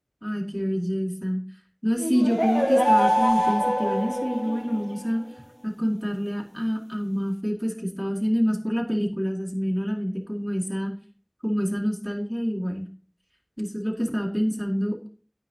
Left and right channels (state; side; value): identical; both; correlation 1.00